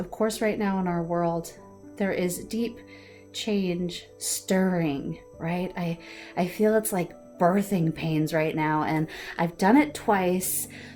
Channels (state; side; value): identical; both; correlation 1.00